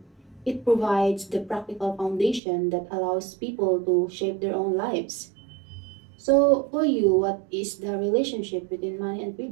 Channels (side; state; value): left; drops out; at 2.4 s